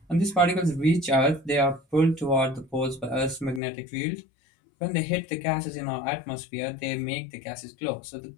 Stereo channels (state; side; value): drops out; right; at 3.6 s